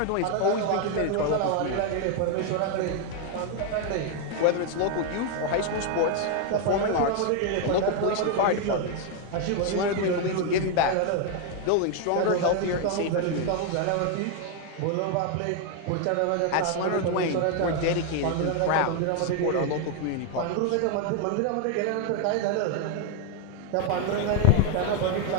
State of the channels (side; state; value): both; different; correlation 0.01